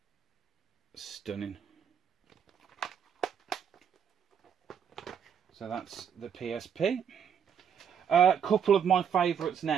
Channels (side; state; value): left; quieter; 7.9 dB